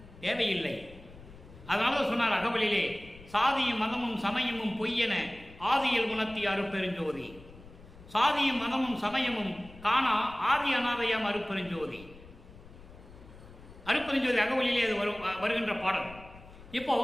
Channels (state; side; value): noise; left; rumble, 19 dB below the sound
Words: தேவையில்லை. அதனால சொன்னார் அகவலிலே, சாதியும் மதமும் சமயமும் பொய்யென ஆதியில் உணர்த்திய அருப்பெருஞ்சோதி, சாதியும் மதமும் சமயமும் காணா ஆதி அநாதையாம் அருப்பெருஞ்சோதி. அருப்பெருஞ்சோதி அகவலிலே அது வருகின்ற பாடல். இப்போ